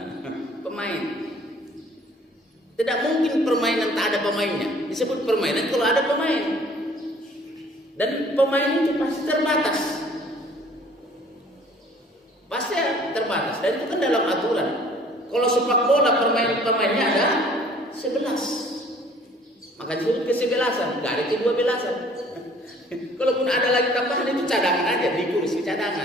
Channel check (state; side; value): normal; both; correlation 0.55